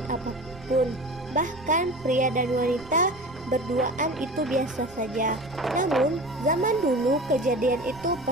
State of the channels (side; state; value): right; noise; rumble, 20 dB below the sound